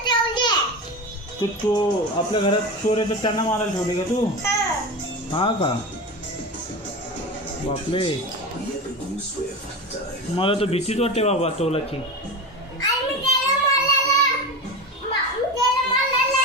तू आपल्या घरात चोर येतात त्यांना मारायला ठेवले का तू? हा का? बापले, मला तर भीतीच वाटते बाबा तोलाची.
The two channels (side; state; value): both; normal; correlation 0.25